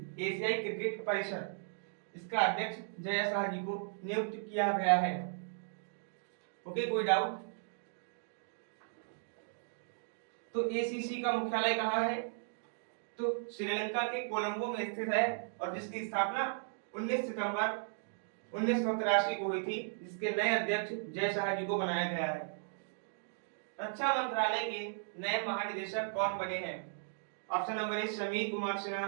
एशियाई क्रिकेट परिषद इसका अध्यक्ष जय शाह जी को नियुक्त किया गया है। ओके, कोई डाउट? तो एसीसी का मुख्यालय कहाँ है? तो श्रीलंका के कोलंबो में स्थित है और जिसकी स्थापना 19 सितंबर 1983 को हुई थी, जिसके नए अध्यक्ष जय शाह जी को बनाया गया है। रक्षा मंत्रालय के नए महानिदेशक कौन बने हैं? Option number A Sameer Kumar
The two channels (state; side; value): silent; left; digital silence